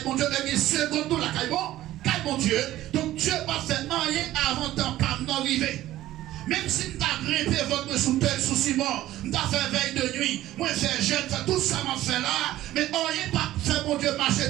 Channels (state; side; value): quieter; left; 14.7 dB